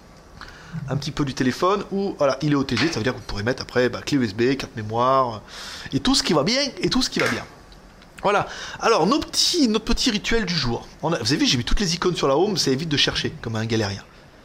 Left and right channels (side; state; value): both; identical; correlation 1.00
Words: Un petit peu du téléphone où voilà, il est OTG, ça veut dire que vous pourrez mettre après clé USB, carte mémoire et tout ce qui va bien Voilà, alors notre petit rituel du jour. Vous avez vu, j'ai mis toutes les icônes sur la home, ça évite de chercher comme un galérien.